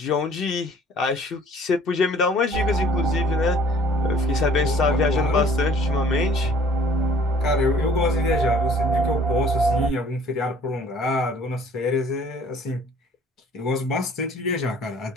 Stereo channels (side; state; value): both; normal; correlation 0.55